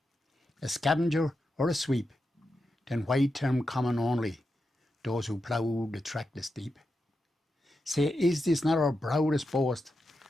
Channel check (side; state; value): both; normal; correlation 0.88